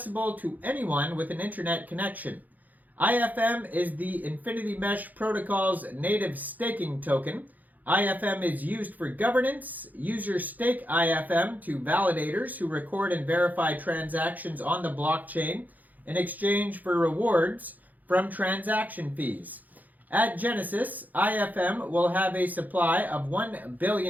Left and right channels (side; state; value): left; late; 0.082 ms